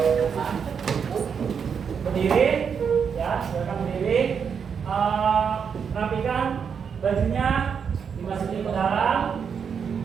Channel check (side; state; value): left; quieter; 6.8 dB